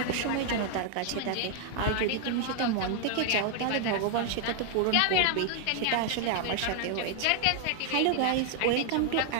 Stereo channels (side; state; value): both; different; correlation 0.00